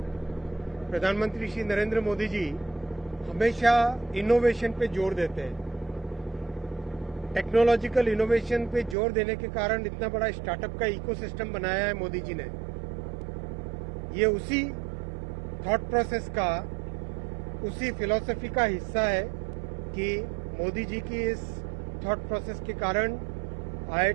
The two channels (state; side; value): drops out; left; at 9.0 s